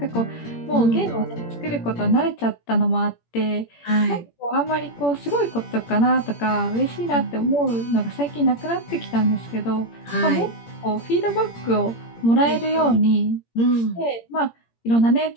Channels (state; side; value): late; right; 17 ms